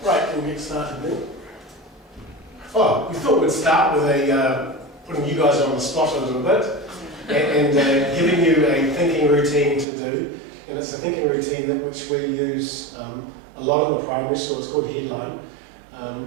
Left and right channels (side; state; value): left; drops out; at 9.9 s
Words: Right, we'll get started then. Oh, we thought we'd start with putting you guys on the spot a little bit and giving you a thinking routine to do. and it's a thinking routine that which we use a lot in the primary school. It's called Headline.